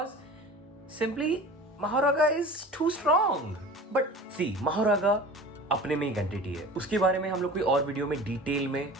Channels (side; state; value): both; normal; correlation 0.38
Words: simply Mahoraga is too strong. But see, Mahoraga अपने में एक एंटिटी है, उसके बारे में हम लोग कोई और वीडियो में डिटेल में